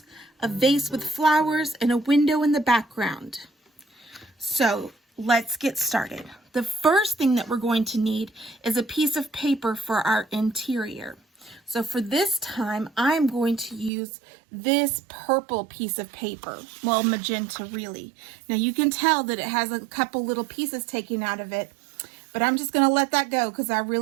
a vase with flowers, and a window in the background. So let's get started. The first thing that we're going to need is a piece of paper for our interior. So for this time, I'm going to use this purple piece of paper. Well, magenta really. Now you can tell that it has a couple little pieces taken out of it, but I'm just going to let that go because I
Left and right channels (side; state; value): left; drops out; at 13.9 s